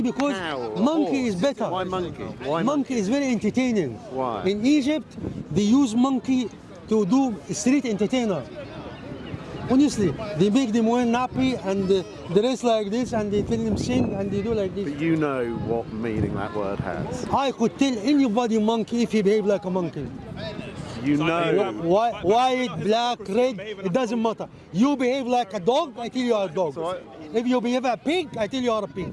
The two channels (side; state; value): both; identical; correlation 1.00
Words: because cow or a monkey horse. is better. Why monkey? Why Monkey is very entertaining. Why? In Egypt, they use monkey to do street entertainer. Honestly, they make them wear nappy and dress like this, and they tell them sing and they do like this. But you know what meaning that word has. I could tell anybody monkey if he behave like a monkey. You know. White, black, red, it doesn't matter. You behave like a dog, I tell you are a dog. If you behave a pig, I tell you are a pig.